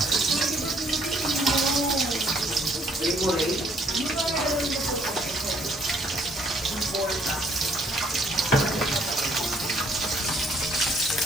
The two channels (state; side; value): normal; both; correlation 0.64